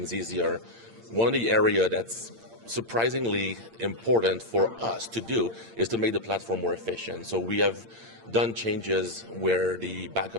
easier. One of the area that's surprisingly important for us to do is to make the platform more efficient. So we have done changes where the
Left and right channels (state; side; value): late; left; 8.8 ms